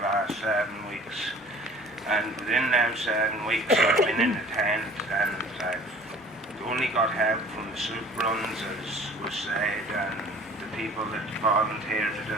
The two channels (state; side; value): normal; both; correlation 0.48